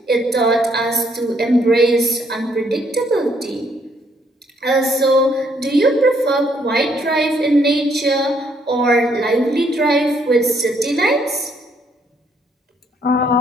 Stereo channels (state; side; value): normal; both; correlation 0.69